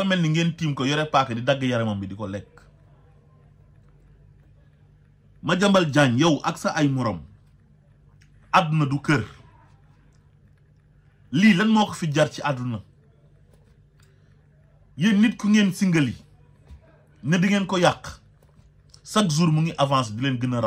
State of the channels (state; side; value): identical; both; correlation 1.00